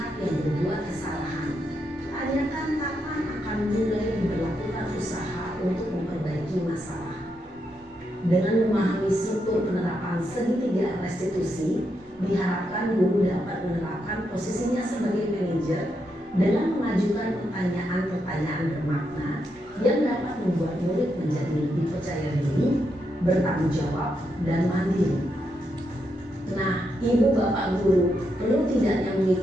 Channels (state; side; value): normal; both; correlation 0.82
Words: yang berbuat kesalahan. Tanyakan kapan akan mulai diberlakukan usaha untuk memperbaiki masalah. Dengan memahami struktur penerapan segitiga restitusi, diharapkan guru dapat menerapkan posisinya sebagai manajer dengan mengajukan pertanyaan-pertanyaan bermakna yang dapat membuat murid menjadi lebih percaya diri, bertanggung jawab, dan mandiri. Nah, Ibu bapak guru perlu tidaknya